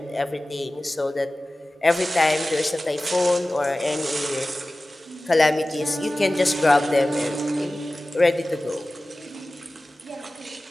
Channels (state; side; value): normal; both; correlation 0.96